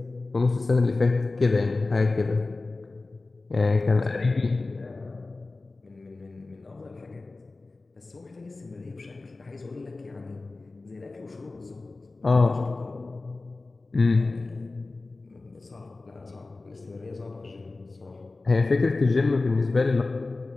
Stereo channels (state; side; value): quieter; right; 3.4 dB